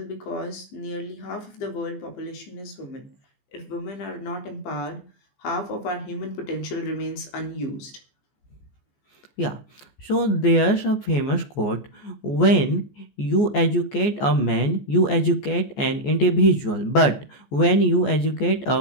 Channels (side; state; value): right; late; 14 ms